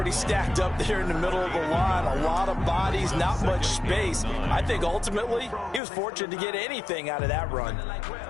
stacked up there in the middle of the line. A lot of bodies, not much space. I think ultimately he was fortunate to get anything out of that run.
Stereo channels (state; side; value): drops out; right; at 5.8 s